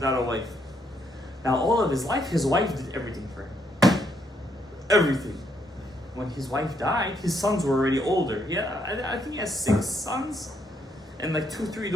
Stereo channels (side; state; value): both; normal; correlation 0.74